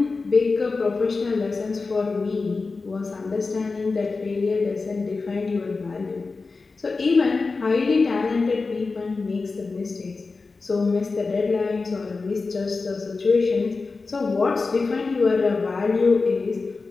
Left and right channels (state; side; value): quieter; right; 4.1 dB